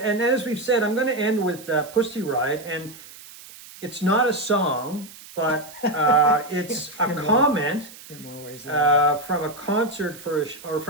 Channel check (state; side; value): noise; right; hiss, 18 dB below the sound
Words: as we've said, I'm going to end with Pussy Riot, and it's not a song, but it's a comment in more ways from a concert or